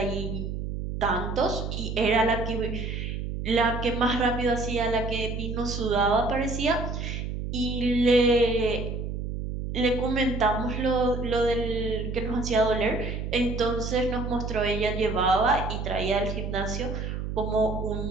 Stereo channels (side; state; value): right; noise; hum, 4 dB below the sound